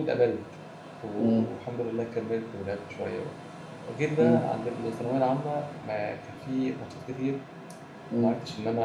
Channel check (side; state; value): both; identical; correlation 1.00